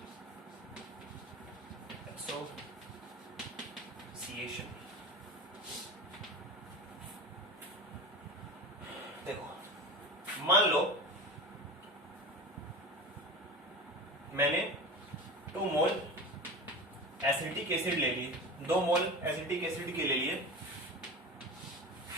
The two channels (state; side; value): normal; both; correlation 0.30